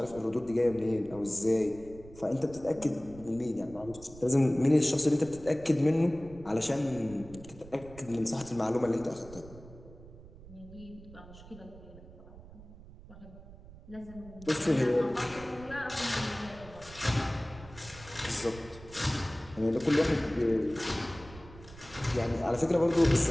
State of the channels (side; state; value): right; noise; rumble, 18 dB below the sound